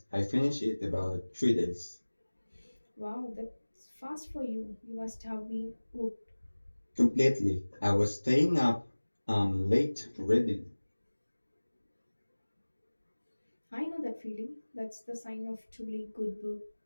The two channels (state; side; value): inverted; both; correlation -1.00